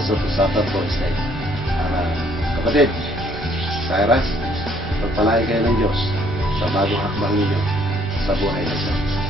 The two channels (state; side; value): normal; both; correlation 0.64